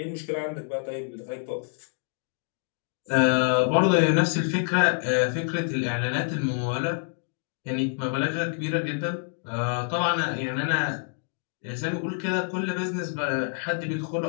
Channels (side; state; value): right; silent; 60 dB below the other